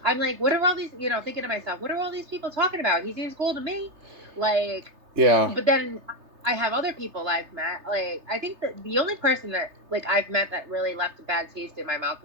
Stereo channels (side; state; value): left; late; 3.3 ms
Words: I'm like, what are all these, you know, thinking to myself, what are all these people talking about? He seems cool to me. Like, Yeah. but then I have other people I've met. Like, I think that the only person that, like, I've met that really left a bad taste in my mouth